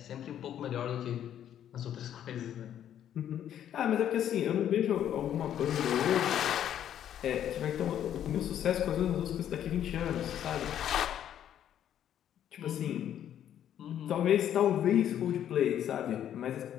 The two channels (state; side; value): quieter; right; 10.4 dB